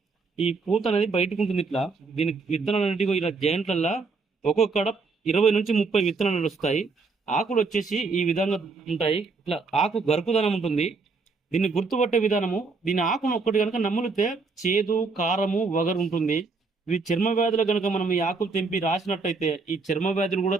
ఈ పూత అనేది బయటకు ఉంటుంది ఇట్లా. దీని విత్తనాలు అనేటివి ఇలా జాయింట్లల్లో ఒక్కొక్కడ 20 నుంచి 30 విత్తనాలు వస్తాయి. ఆకులు వచ్చేసి ఈ విధంగా ఉంటాయి. ఇట్లా ఆకు గరుకుదనం ఉంటుంది. దీన్ని గుర్తుపట్టే విధానము, దీని ఆకును ఒక్కటి కనుక నములితే చేదు, కారము, వగరు ఉంటుంది. ఇవి చర్మ వ్యాధులు కనుక మనం ఈ ఆకులు తెంపి రాసినట్టయితే ఈ చర్మ వ్యాధులు కూడా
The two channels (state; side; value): quieter; left; 4.2 dB